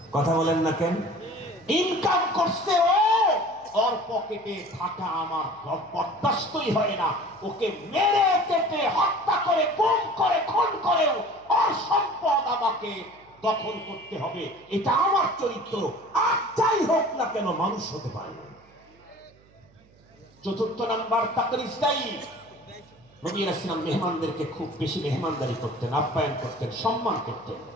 কথা বলেন না কেন? ইনকাম করছে ও, ওর পকেটে থাকা আমার বরদাস্তই হয় না, ওকে মেরে কেটে হত্যা করে গুম করে খুন করেও ওর সম্পদ আমাকে দখল করতে হবে, এটা আমার চরিত্র। আর যাই হোক না কেন মানুষ হতে পারে না। চতুর্থ নাম্বার তাকরিস্তাই। নবী রাসূল মেহমানদেরকে খুব বেশি মেহমানদারি করতেন, আপ্যায়ন করতেন, সম্মান করতেন।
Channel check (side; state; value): right; noise; hum, 29 dB below the sound